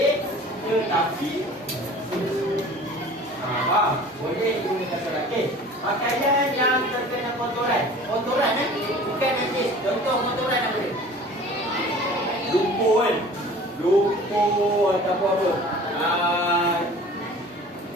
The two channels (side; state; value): both; normal; correlation 0.44